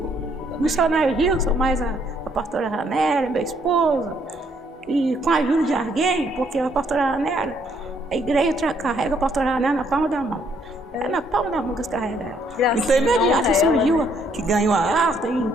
missionário Gilson, mais a pastora Ranera, minha esposa, e com a ajuda de alguém, porque a pastora Ranera, a igreja carrega a pastora Ranera na palma da mão. É na palma da mão que eles carregam ela. Então, imediato surgiu, que ganhou a arte, e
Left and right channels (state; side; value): normal; both; correlation 0.69